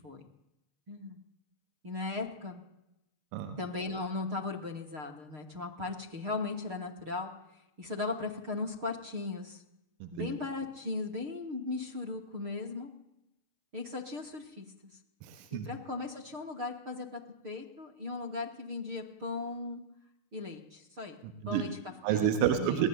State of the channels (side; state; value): left; late; 6.6 ms